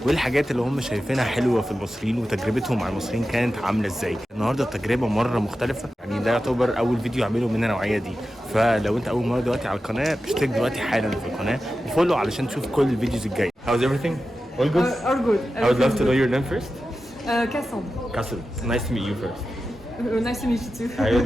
وايه الحاجات اللي هم شايفينها حلوه في المصريين وتجربتهم مع المصريين كانت عامله ازاي. النهارده التجربه مره مختلفه، يعني ده يعتبر اول فيديو اعمله من النوعيه دي. فلو انت اول مره دلوقتي على القناه اشترك دلوقتي حالا في القناه وفولو علشان تشوف كل الفيديوز الجايه. How's everything? All good? All good. I would love to know your name first. Cassandra. Cassandra, nice to meet you first. Nice to meet you too. I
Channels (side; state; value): both; normal; correlation 0.92